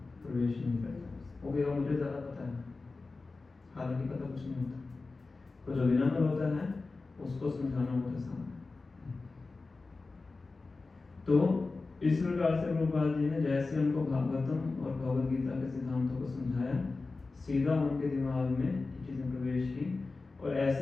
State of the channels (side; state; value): right; quieter; 3.8 dB